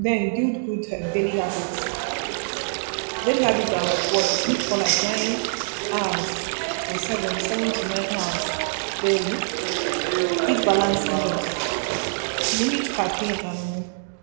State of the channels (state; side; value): silent; left; digital silence